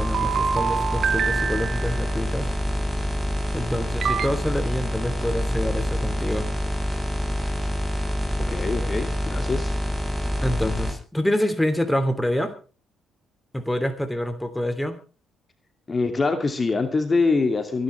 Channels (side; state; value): both; normal; correlation 0.92